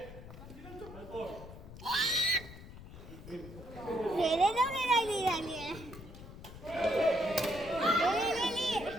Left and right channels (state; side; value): noise; left; rumble, 15 dB below the sound